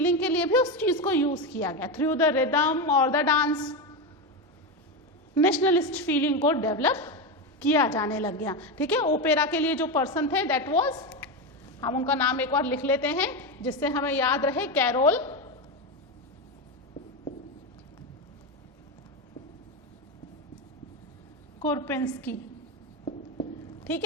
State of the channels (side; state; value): both; normal; correlation 0.14